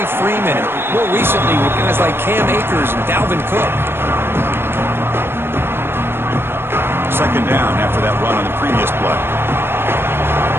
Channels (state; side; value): late; left; 0.11 ms